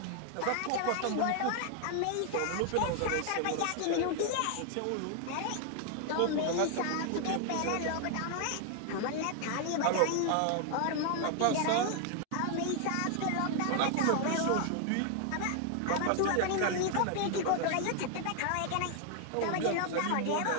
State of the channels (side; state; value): both; different; correlation 0.00